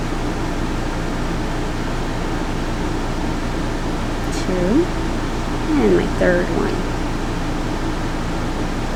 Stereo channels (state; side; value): identical; both; correlation 1.00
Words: 2, and my 3rd one.